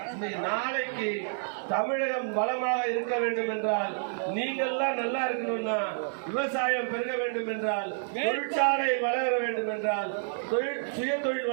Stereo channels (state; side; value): silent; left; digital silence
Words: இன்னைக்கு நாளைக்கு தமிழகம் வளமாக இருக்க வேண்டும் என்றால், நீங்கள்லாம் நல்லா இருக்கணும்னா, விவசாயம் பெருக வேண்டும் என்றால், தொழிற்சாலை வளர வேண்டும் என்றால், சுய தொழில்